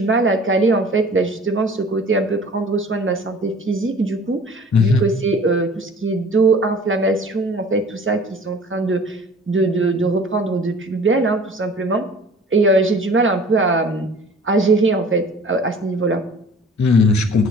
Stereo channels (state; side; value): normal; both; correlation 0.47